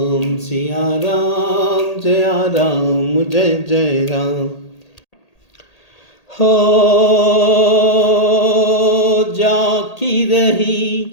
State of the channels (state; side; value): late; right; 1.8 ms